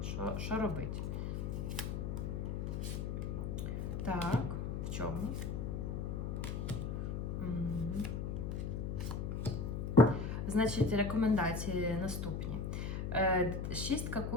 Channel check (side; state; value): left; noise; hum, 2 dB below the sound